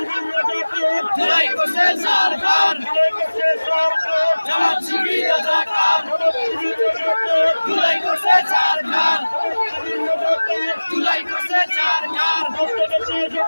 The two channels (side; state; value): both; inverted; correlation -1.00